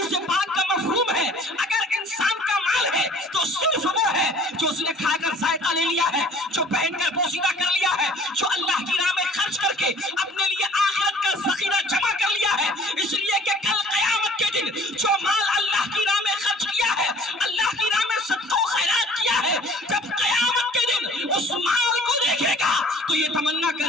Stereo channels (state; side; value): normal; both; correlation 0.50